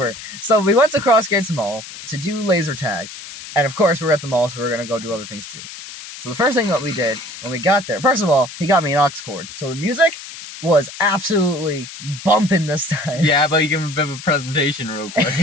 So we went to Crossgates Mall to do laser tag. And of course, we're at the mall, so we're going to go do other things too. So the first thing that we did when we got there, first of all, he got me an aux cord. So the music was absolutely bumping this time. Yeah, but you give him a bit of a presentation real quick.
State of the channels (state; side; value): noise; left; hiss, 13 dB below the sound